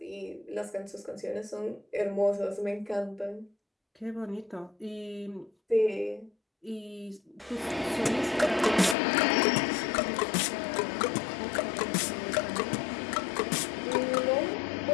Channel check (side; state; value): right; drops out; at 9.0 s